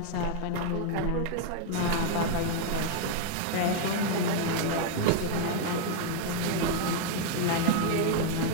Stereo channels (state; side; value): different; both; correlation 0.00